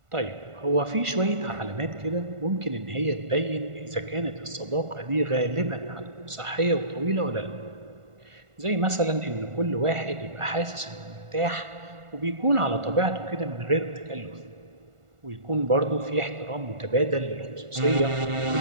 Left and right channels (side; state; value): left; late; 1.5 ms